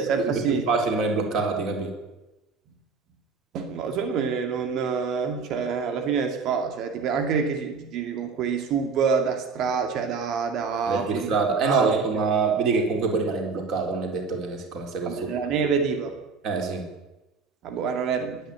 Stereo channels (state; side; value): quieter; left; 4.9 dB